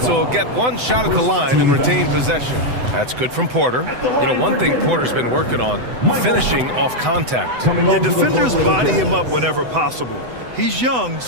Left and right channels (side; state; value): left; late; 7.9 ms